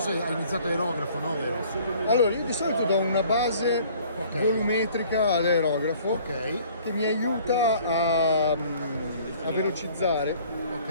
se hai iniziato aerografo, no? Vero? Allora, io di solito do una base volumetrica all'aerografo Ok, che mi aiuta a velocizzare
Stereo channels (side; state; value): both; inverted; correlation -0.54